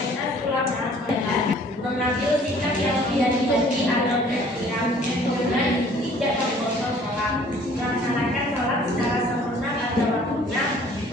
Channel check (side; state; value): both; normal; correlation 0.55